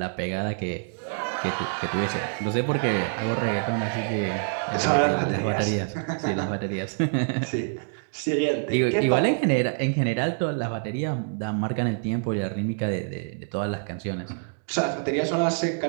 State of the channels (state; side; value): silent; left; digital silence